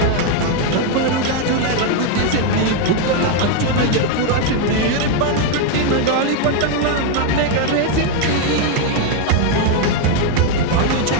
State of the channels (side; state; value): both; different; correlation 0.01